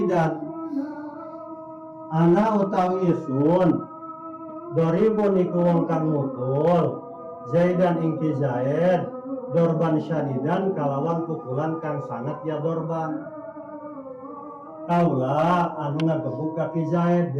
Ana utawi isun doribun iku wong kang mukul, Zaidan ingki Zaid dorban syadidan kalawan pukulan kang sangat ya dorban. Kaula anu ngagebuk kaki Zaid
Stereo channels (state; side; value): identical; both; correlation 1.00